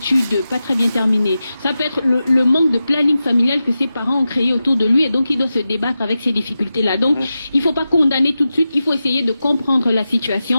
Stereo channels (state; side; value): inverted; both; correlation -0.92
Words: pas très bien terminées, ça peut être le manque de planning familial que ses parents ont créé autour de lui et donc il doit se débattre avec ces difficultés-là. Donc il ne faut pas condamner tout de suite, il faut essayer de comprendre la